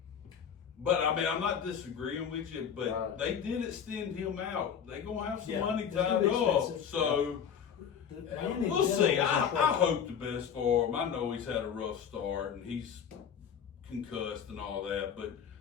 But I mean, I'm not disagreeing with you, but Right. they did extend him out. They gonna have some Yeah, money it's tied gonna be up. expensive. So The man in we'll see. general I is impressive. hope the best for him. I know he's had a rough start and he's concussed and all that, but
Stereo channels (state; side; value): quieter; right; 7.8 dB